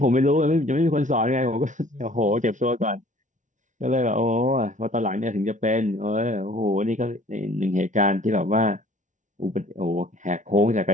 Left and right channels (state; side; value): late; left; 0.36 ms